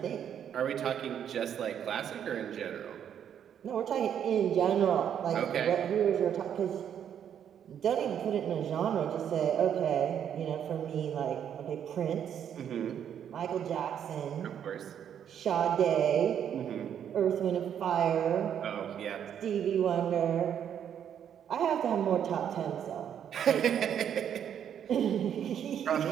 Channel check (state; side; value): quieter; left; 9.0 dB